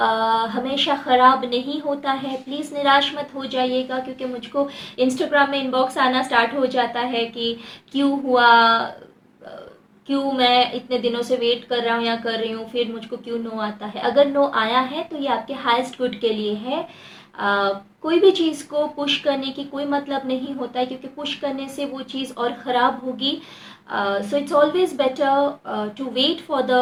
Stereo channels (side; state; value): both; identical; correlation 1.00